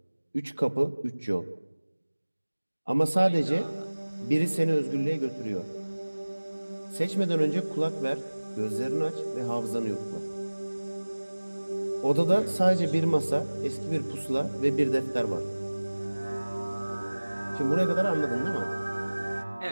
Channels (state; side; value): inverted; both; correlation -1.00